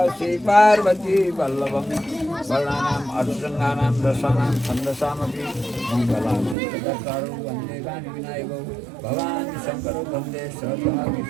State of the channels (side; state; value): left; drops out; at 6.6 s